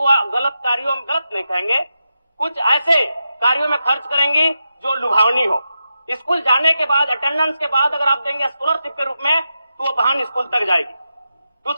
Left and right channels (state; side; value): inverted; both; correlation -0.87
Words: गलत कार्यों में, गलत नहीं कहेंगे, कुछ ऐसे कार्यों में खर्च करेंगी जो लुभावनी हो। स्कूल जाने के बाद, अटेंडेंस के बाद अगर आप देंगे स्कॉलरशिप के रूप में तो वो बहन स्कूल तक जाएगी।